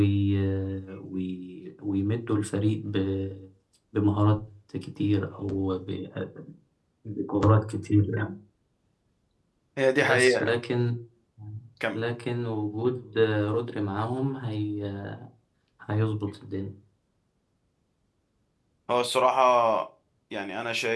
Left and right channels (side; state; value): both; identical; correlation 1.00